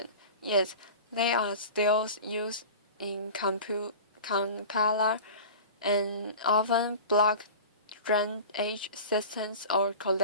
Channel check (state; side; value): inverted; both; correlation -0.36